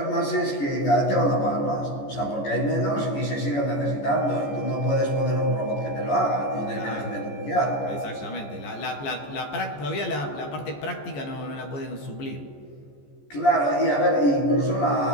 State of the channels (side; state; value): right; late; 14 ms